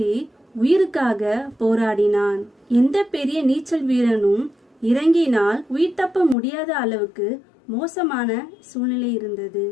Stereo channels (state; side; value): drops out; right; at 6.4 s